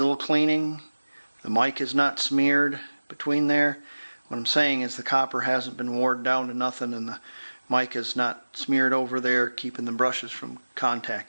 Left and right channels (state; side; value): inverted; both; correlation -1.00